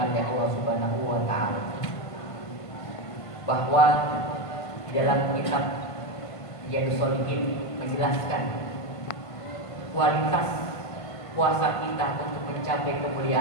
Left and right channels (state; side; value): late; right; 1.5 ms